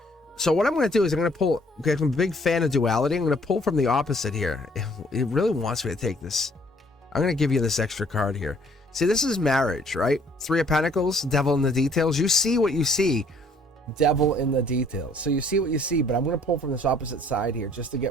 So what I'm going to do is I'm going to pull, because I'm a big fan of duality, I'm going to pull from the opposite here. It really wants me to take this. I'm going to give you this extra card here. See, this is marriage, right? 3 of Pentacles, devil in the details. You see what you see, devil in the details. So you see what you see, but I'm going to pull from this opposite side here just to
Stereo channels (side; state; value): both; normal; correlation 0.61